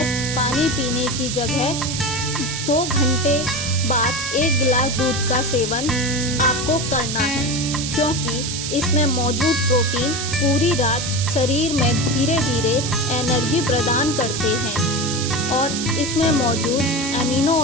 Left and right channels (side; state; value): right; noise; hiss, 4 dB below the sound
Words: पानी पीने की जगह 2 घंटे बाद 1 गिलास दूध का सेवन आपको करना है, क्योंकि इसमें मौजूद प्रोटीन पूरी रात शरीर में धीरे धीरे एनर्जी प्रदान करते हैं और इसमें मौजूद